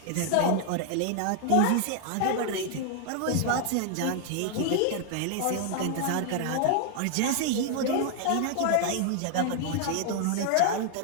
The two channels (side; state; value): both; different; correlation 0.00